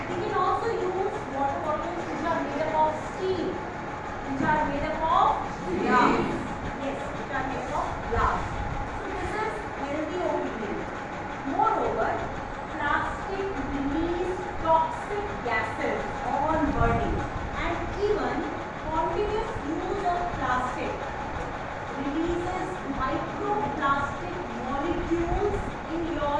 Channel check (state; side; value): identical; both; correlation 1.00